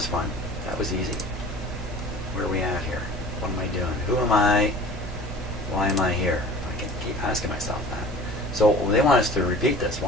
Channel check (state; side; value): normal; both; correlation 0.43